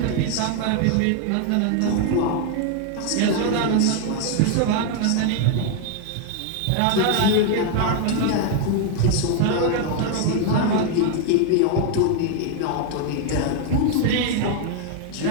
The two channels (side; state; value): both; different; correlation 0.00